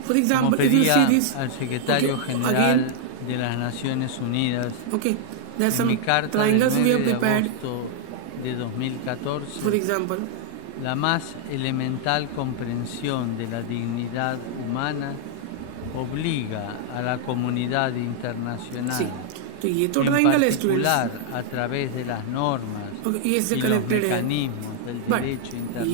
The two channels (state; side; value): different; both; correlation -0.01